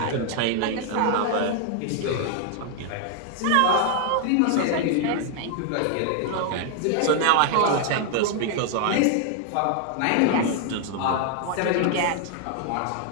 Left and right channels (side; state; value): both; different; correlation 0.00